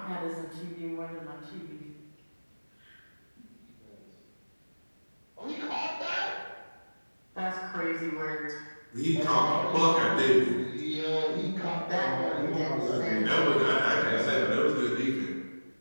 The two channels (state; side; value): inverted; both; correlation -1.00